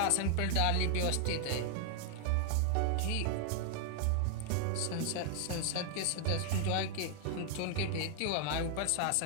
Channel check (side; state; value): both; different; correlation 0.00